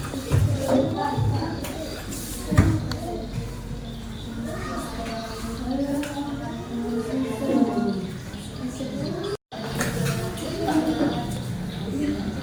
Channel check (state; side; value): identical; both; correlation 1.00